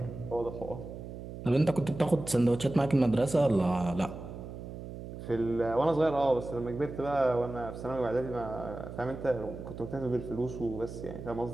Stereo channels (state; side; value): noise; right; hum, 10 dB below the sound